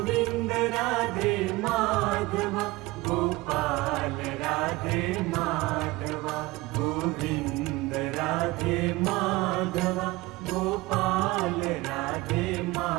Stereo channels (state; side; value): quieter; left; 20.7 dB